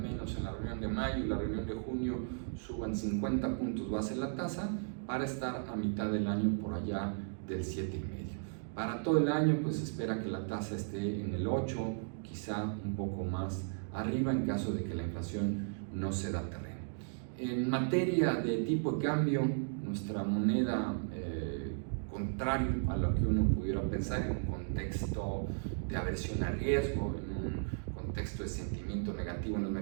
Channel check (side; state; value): left; silent; digital silence